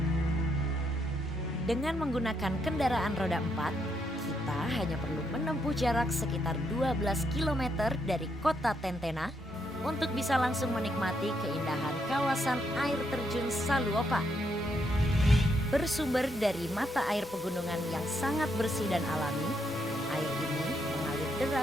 Dengan menggunakan kendaraan roda 4, kita hanya perlu menempuh jarak sekitar 12 km dari kota Tentena untuk bisa langsung menikmati keindahan kawasan air terjun Saluopa. Bersumber dari mata air pegunungan yang sangat bersih dan alami, air ini mengalir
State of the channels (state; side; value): normal; both; correlation 0.77